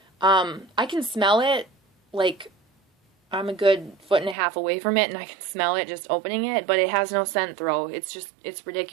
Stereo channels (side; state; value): left; drops out; at 4.4 s